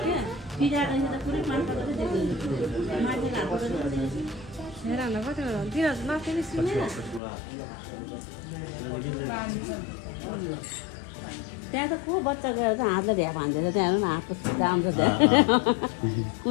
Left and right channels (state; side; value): drops out; right; at 7.2 s